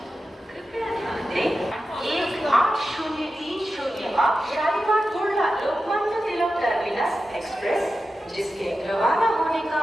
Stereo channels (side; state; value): both; normal; correlation 0.92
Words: कृपया ध्यान दें 18030 अब शालीमार कुर्ला लोकमान्य तिलक टर्मिनस एक्सप्रेस जिसके रवाना होने का